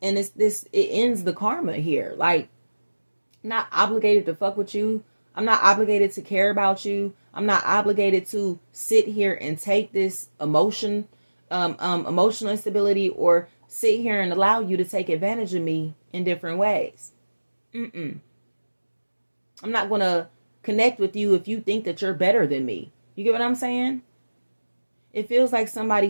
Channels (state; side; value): inverted; both; correlation -1.00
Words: And it ends the karma here. Like, I'm not obligated to fuck with you. I'm not obligated to care about you. I'm not obligated to sit here and take this emotional instability, or sit here and allow you to take advantage of me in different ways. I'm not going to connect with you if you think that you're better than me. You get what I'm saying? It feels like somebody